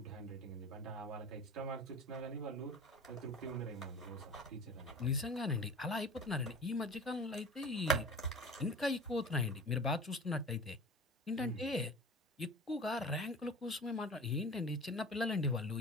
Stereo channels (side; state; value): both; normal; correlation 0.38